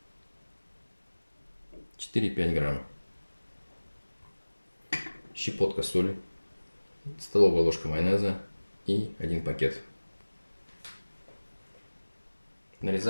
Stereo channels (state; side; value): inverted; both; correlation -1.00